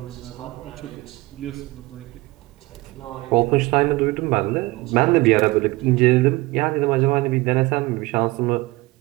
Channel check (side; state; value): left; quieter; 21.7 dB